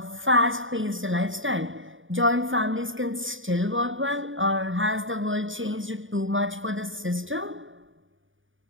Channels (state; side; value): late; left; 0.57 ms